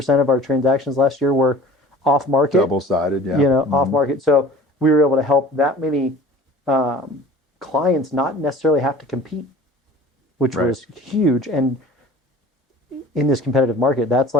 of our transactions last year were off-market. Double-sided, off-market. So we were able to help that many clients not necessarily have to compete, which was huge. And in this competitive market, that's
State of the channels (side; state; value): both; normal; correlation 0.44